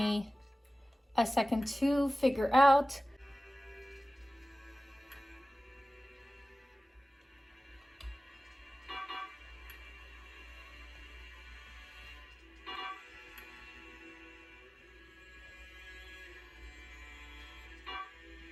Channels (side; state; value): both; normal; correlation 0.97